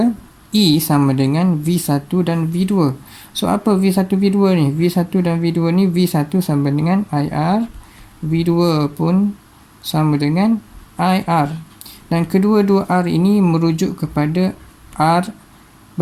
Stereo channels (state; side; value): identical; both; correlation 1.00